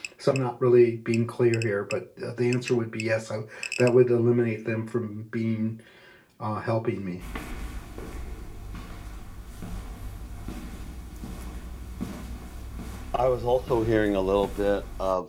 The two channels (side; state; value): both; identical; correlation 1.00